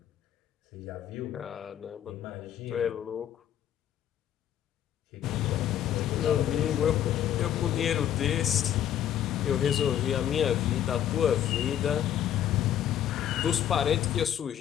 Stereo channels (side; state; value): right; quieter; 10.6 dB